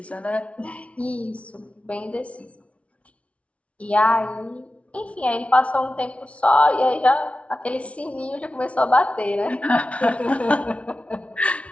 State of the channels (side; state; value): right; late; 0.063 ms